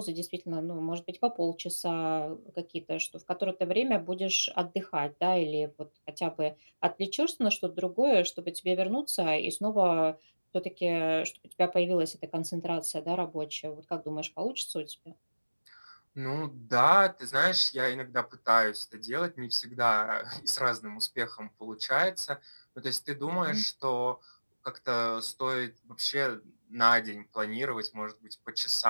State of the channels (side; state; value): both; inverted; correlation -1.00